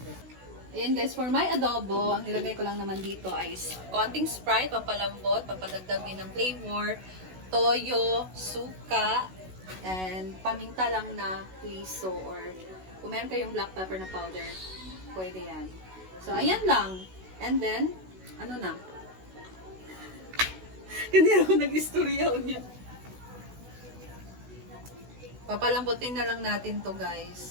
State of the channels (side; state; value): left; late; 16 ms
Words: Ayan guys, for my adobo, ang nilagay ko lang naman dito ay konting Sprite, pampalambot, pampadagdag din ng flavor, toyo, suka, And paminta lang na huiso or kung meron kayong black pepper na powder, pwede yan. So, ayan lang. And then, ano na? Ganyan ako nag-istorya niya. Papalambutin na lang natin to,